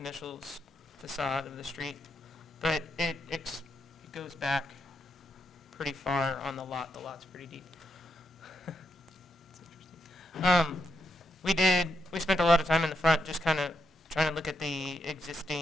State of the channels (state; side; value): normal; both; correlation 0.82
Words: facade of the street. But it goes back pretty far on the lot. The lot's pretty deep. It's interesting. We spent a lot of time in the front just kind of trying to look at the